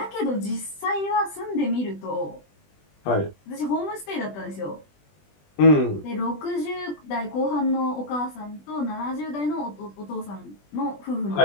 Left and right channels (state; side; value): late; right; 20 ms